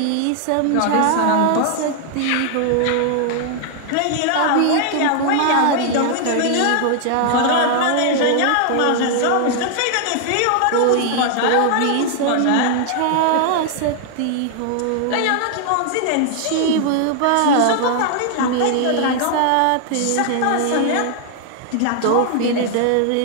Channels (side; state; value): both; different; correlation 0.00